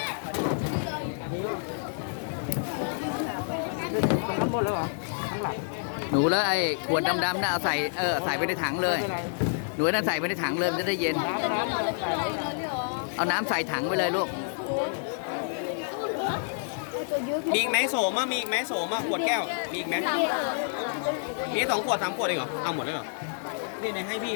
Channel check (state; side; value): silent; right; digital silence